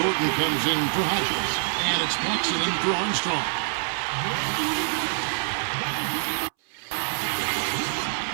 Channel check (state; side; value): silent; left; 61 dB below the other